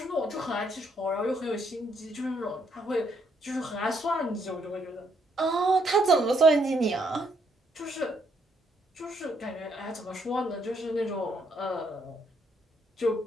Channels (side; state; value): both; normal; correlation 0.72